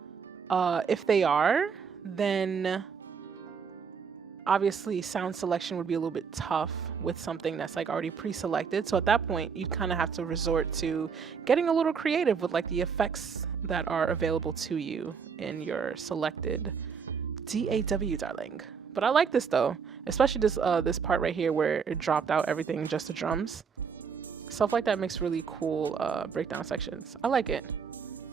If they are, then obviously sound selection would be a little bit tough with something that's like already pre-selected. So at that point, you'd kind of have to resort to getting a little creative with like the effects that are available to you in your selected DAW, darling. But I like this though, especially this part right here where it dropped out everything, just the drums. Stuff like that makes really cool breakdown sections. I like it.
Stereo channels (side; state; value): left; quieter; 6.1 dB